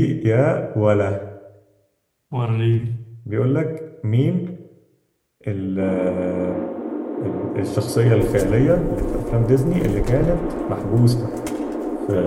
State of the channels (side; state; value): both; identical; correlation 1.00